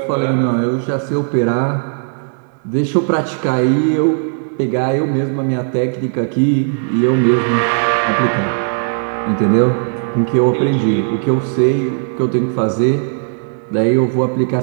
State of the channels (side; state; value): left; silent; digital silence